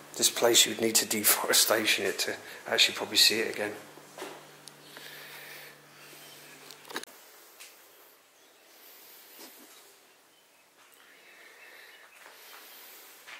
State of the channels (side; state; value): both; identical; correlation 1.00